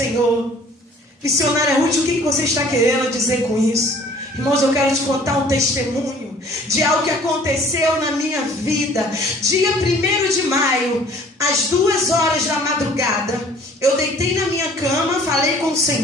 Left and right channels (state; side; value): normal; both; correlation 0.53